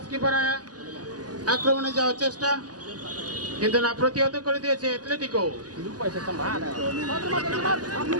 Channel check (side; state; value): left; late; 0.68 ms